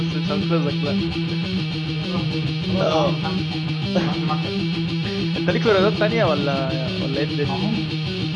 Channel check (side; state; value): both; identical; correlation 1.00